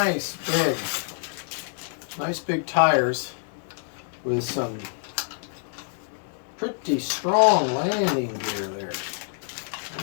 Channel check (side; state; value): right; silent; digital silence